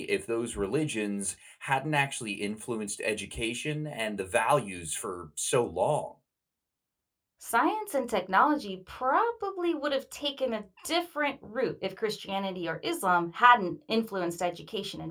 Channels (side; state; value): both; identical; correlation 1.00